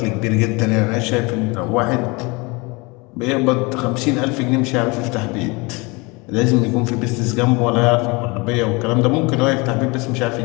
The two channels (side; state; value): right; quieter; 26.9 dB